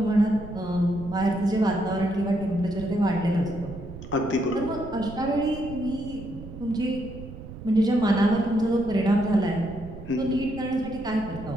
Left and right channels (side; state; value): right; noise; rumble, 13 dB below the sound